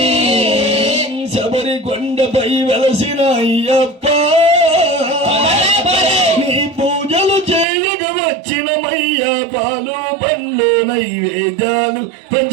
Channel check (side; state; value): left; drops out; at 7.7 s